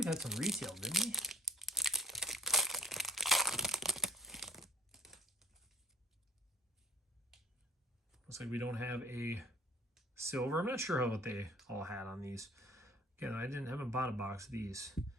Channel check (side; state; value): both; normal; correlation 0.48